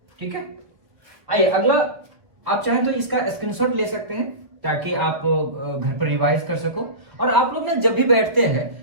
ठीक है, आइए अगला। आप चाहें तो इसका स्क्रीनशॉट ले सकते हैं ताकि आप घर पर रिवाइज कर सको। और आप लोग ना जब भी बैठते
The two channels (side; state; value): left; late; 1.5 ms